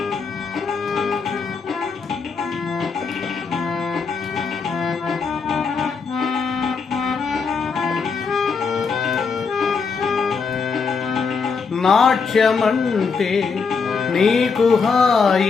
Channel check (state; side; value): quieter; right; 5.2 dB